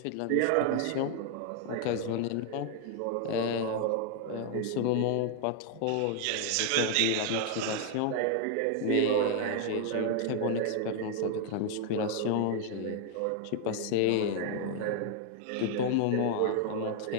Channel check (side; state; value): both; different; correlation 0.00